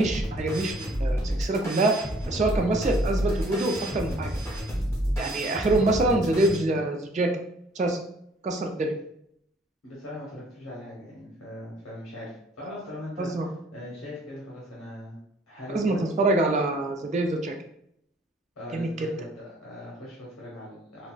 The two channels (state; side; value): normal; both; correlation 0.59